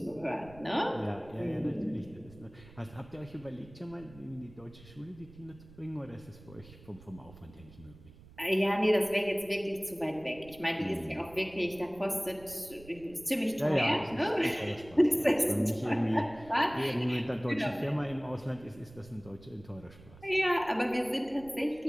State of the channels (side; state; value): right; noise; rumble, 21 dB below the sound